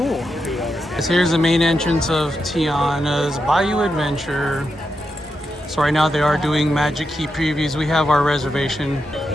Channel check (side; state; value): both; normal; correlation 0.86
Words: So here's the main entrance of Tiana's Bayou Adventure. So right now they are doing Magic Key previews. We have our reservation.